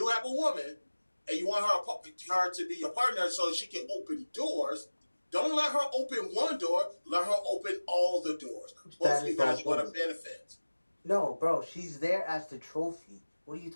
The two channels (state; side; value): inverted; both; correlation -1.00